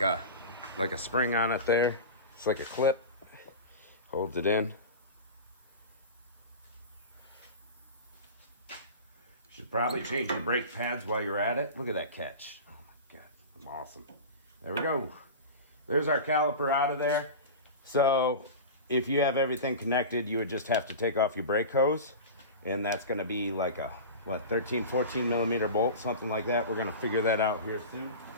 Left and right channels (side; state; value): both; inverted; correlation -0.30